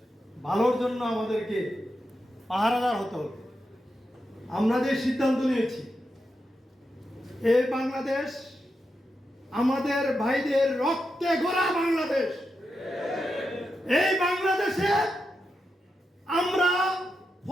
ভালোর জন্য আমাদেরকে পাহারাদার হতে হবে। আমরা যে সিদ্ধান্ত নিয়েছি, এই বাংলাদেশ আমাদের ভাইদের রক্তে গড়া বাংলাদেশ। এই বাংলাদেশে আমরা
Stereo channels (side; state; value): both; normal; correlation 0.87